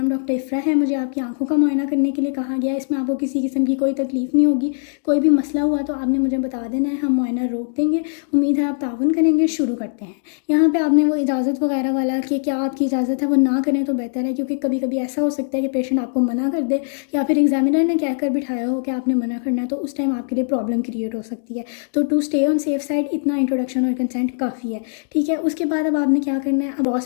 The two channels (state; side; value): silent; right; digital silence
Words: डॉक्टर इफ़रा है, मुझे आपकी आंखों का मुआयना करने के लिए कहा गया है। इसमें आपको किसी किस्म की कोई तकलीफ़ नहीं होगी। कोई भी मसला हुआ तो आपने मुझे बता देना है, हम मुआयना रोक देंगे। उम्मीद है आप ताउन करेंगे। शुरू करते हैं। यहाँ पे आपने वो इजाज़त वगैरह वाला कि क्या आपकी इजाज़त है वो ना करें तो बेहतर है, क्योंकि कभी कभी ऐसा हो सकता है कि पेशेंट आपको मना कर दे, या फिर एग्जामिनर ने कहकर बिठाया हो कि आपने मना करना है, तो उस टाइम आपके लिए प्रॉब्लम क्रिएट हो सकती है। तो to stay on safe side इतना इंट्रोडक्शन और कंसेंट काफ़ी है। ठीक है, उसके बाद अब आपने क्या करना है, अब